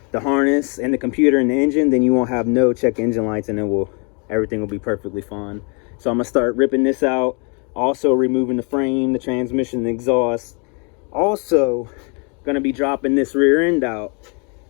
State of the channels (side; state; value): right; quieter; 35.3 dB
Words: the harness and the computer and the engine, then you won't have no check engine lights, and everything will be perfectly fine. So I'm gonna start ripping this out, also removing the frame, the transmission, the exhaust. Also gonna be dropping this rear end out,